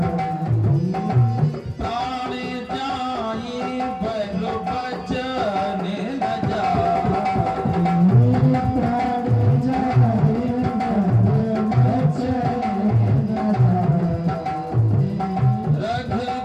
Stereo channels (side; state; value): both; identical; correlation 1.00